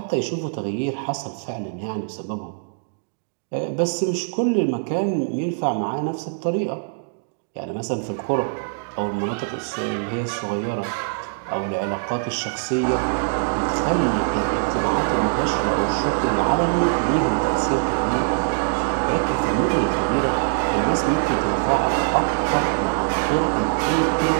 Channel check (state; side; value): silent; left; digital silence